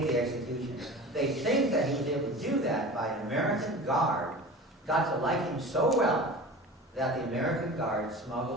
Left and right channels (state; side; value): normal; both; correlation 0.36